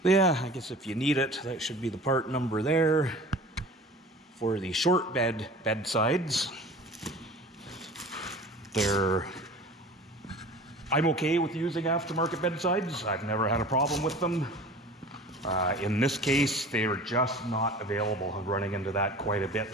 yeah, I guess if you need it, that should be the part number there for the short bedsides. I'm okay with using aftermarket bedsides. I've never had a problem with them. In this case, they are just not available. I'm running into that quite a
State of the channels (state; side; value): normal; both; correlation 0.41